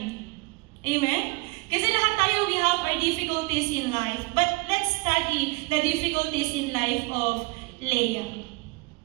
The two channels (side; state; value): left; quieter; 26.4 dB